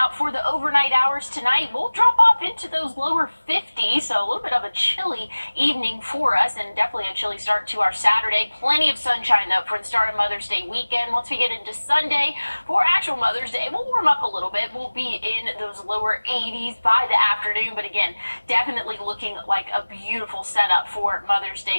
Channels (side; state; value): both; inverted; correlation -1.00